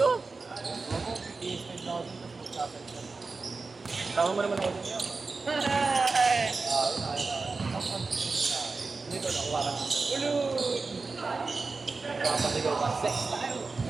Ako, PS5 na ako dito. Tama mo naman ako dun yan. Dito, nakuha ka. Ulul! Papasigaw ka. Sex tayo!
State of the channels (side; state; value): left; quieter; 4.0 dB